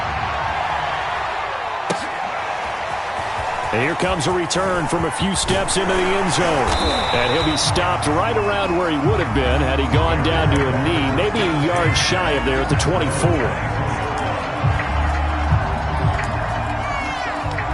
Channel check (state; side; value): identical; both; correlation 1.00